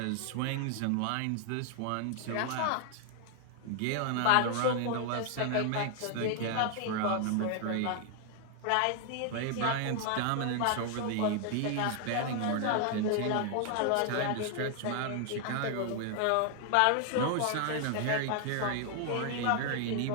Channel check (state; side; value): different; both; correlation 0.00